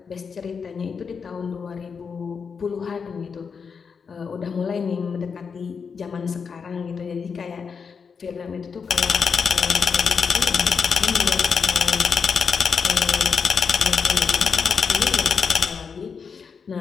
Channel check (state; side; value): quieter; right; 5.9 dB